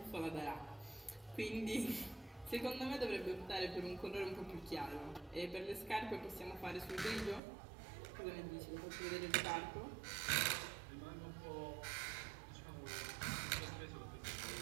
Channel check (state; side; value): drops out; left; at 7.4 s